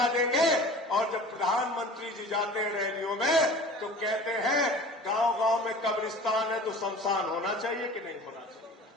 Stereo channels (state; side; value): normal; both; correlation 0.41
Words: देंगे। और जब प्रधानमंत्री जी जाते हैं रैलियों में तो कहते हैं गांव-गांव में कब्रिस्तान है तो शमशान होना चाहिए कि नहीं होना चाहिए।